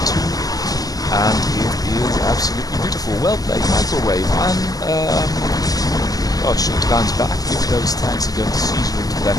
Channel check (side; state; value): right; late; 0.17 ms